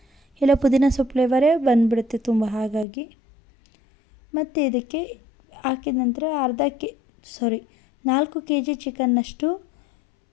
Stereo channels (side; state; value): right; drops out; at 2.9 s